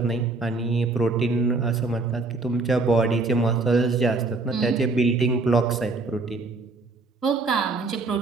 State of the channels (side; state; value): left; quieter; 3.6 dB